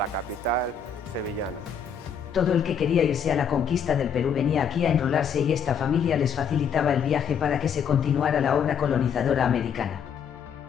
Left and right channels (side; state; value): right; quieter; 7.1 dB